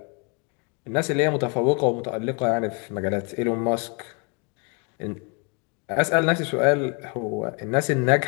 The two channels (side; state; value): right; quieter; 33.8 dB